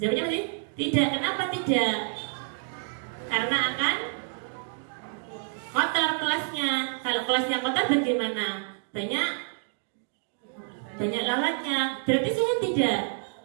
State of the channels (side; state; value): left; silent; 58 dB below the other